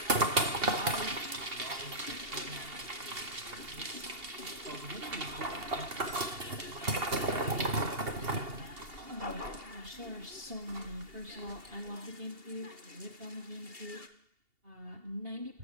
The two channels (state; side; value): late; left; 2.8 ms